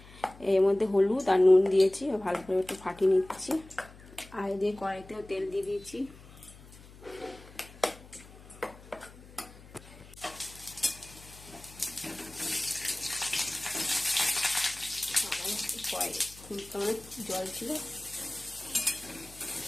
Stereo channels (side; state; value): left; noise; hum, 20 dB below the sound